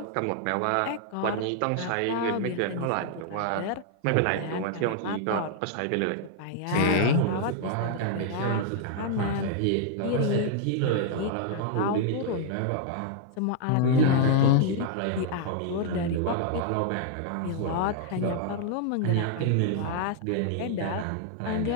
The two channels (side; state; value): both; different; correlation -0.01